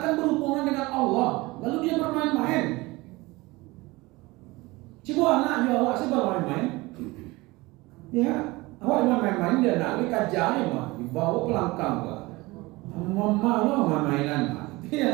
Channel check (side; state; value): left; quieter; 22.0 dB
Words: kan berhubungan dengan Allah, lalu dia bermain-main. Coba anaknya awak sih bermain-main. Ya, awak main-main dia nak kajian mah, dibawa pelangkang gua. Mama lo main-mainan mah.